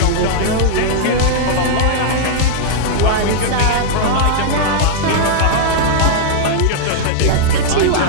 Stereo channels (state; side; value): different; both; correlation -0.01